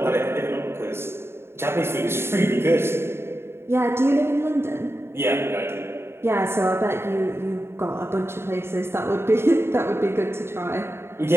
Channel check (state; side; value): late; left; 0.12 ms